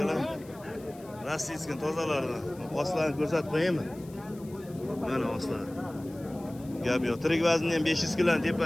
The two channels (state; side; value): noise; left; hiss, 24 dB below the sound